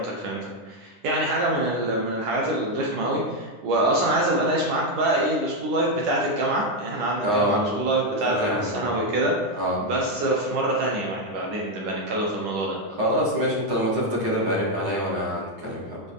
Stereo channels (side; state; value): left; late; 10 ms